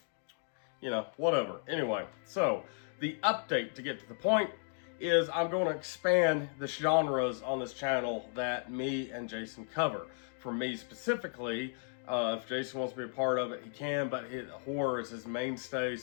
You know, whatever. Anyway, so the update to get to the point is I'm going to expand the genres on this channel that me and Jason cover. For me specifically, if Jason wants to be a part of it, he can, but horror is his mainstay,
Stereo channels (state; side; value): silent; right; 55 dB below the other